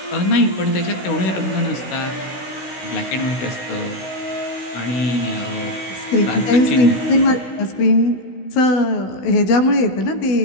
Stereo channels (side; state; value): right; late; 16 ms